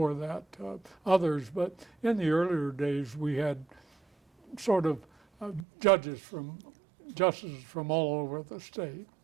that others. But in the earlier days we had sort of justices from all over the state.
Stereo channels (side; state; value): left; drops out; at 5.7 s